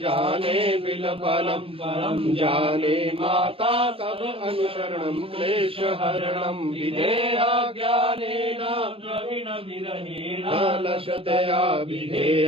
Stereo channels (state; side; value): late; left; 0.27 ms